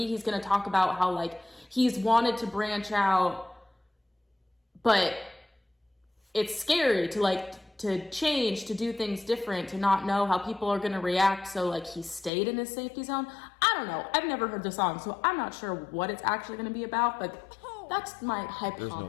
he's gonna talk about how like he's wanted to branch out, but it's scary to change, to do things different, to not know how people are gonna react. So like he stayed in his safety zone. I don't know. I've never heard the song, so I'm not sure what it's actually gonna be about, but that's my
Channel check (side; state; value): right; drops out; at 12.3 s